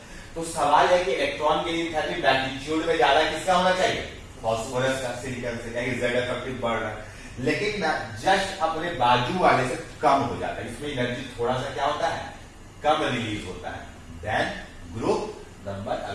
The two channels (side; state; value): both; identical; correlation 1.00